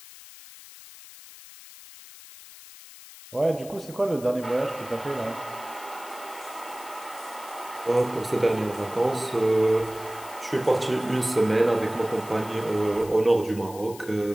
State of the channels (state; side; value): noise; left; hiss, 18 dB below the sound